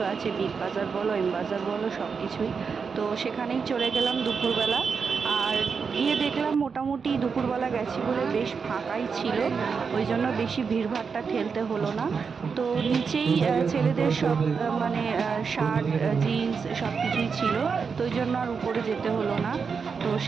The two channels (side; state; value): left; quieter; 5.6 dB